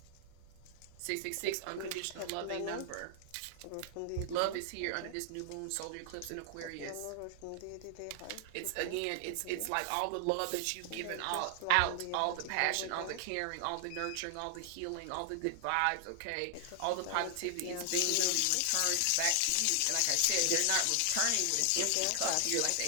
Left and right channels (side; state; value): both; different; correlation 0.00